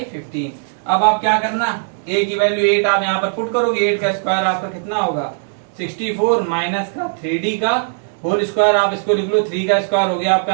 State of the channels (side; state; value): left; silent; 67 dB below the other